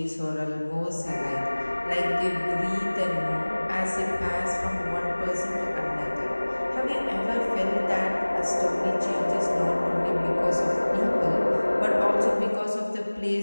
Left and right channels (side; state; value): both; inverted; correlation -1.00